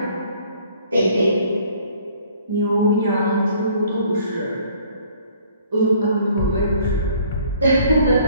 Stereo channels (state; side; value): inverted; both; correlation -0.58